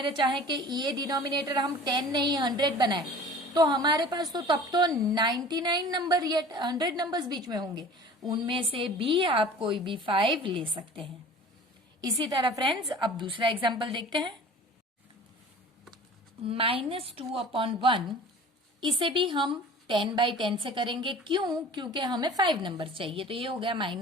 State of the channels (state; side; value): normal; both; correlation 0.43